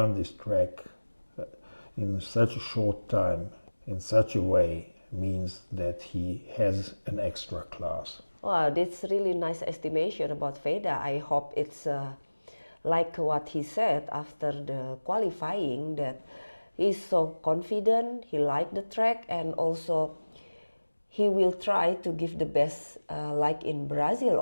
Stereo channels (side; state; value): both; inverted; correlation -1.00